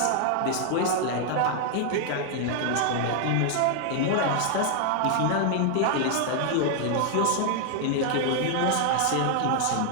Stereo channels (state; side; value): different; both; correlation 0.00